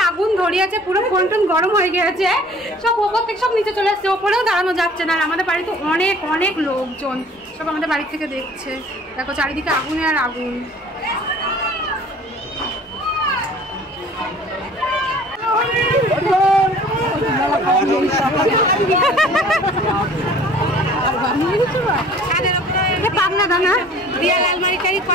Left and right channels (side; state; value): both; normal; correlation 0.50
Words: আগুন ধরিয়েছে, পুরো ফোন টোন গরম হয়ে গেছে, সব ওপর থেকে সব নিচে চলে আসছে, ওপরেও দাঁড়ানো যাচ্ছে না। আর আমাদের বাড়িতে অনেক অনেক লোকজন সব আমাদের বাড়ি থেকে দেখছে, দেখো চারিদিকে আগুনে আর আগুন। পাবনা দানা দিয়া লালমারি টারি